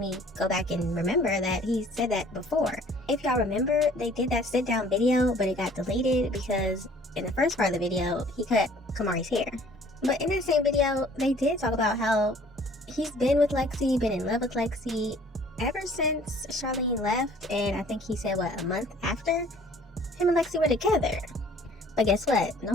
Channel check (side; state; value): both; normal; correlation 0.54